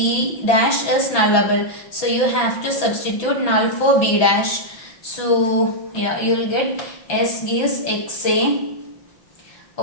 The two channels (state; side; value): late; right; 5.9 ms